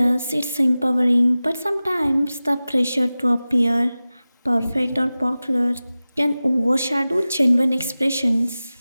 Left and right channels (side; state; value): both; inverted; correlation -0.96